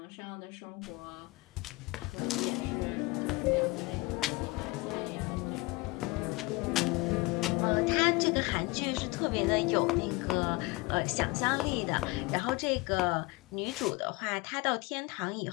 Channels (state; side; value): quieter; right; 23.8 dB